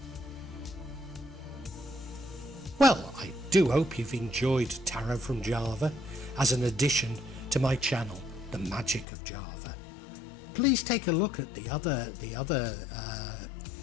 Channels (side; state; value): right; drops out; at 9.1 s